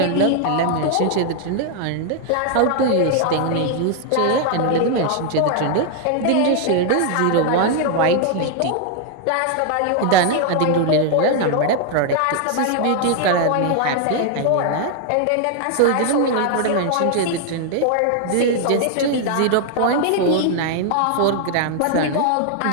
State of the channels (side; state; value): both; different; correlation 0.00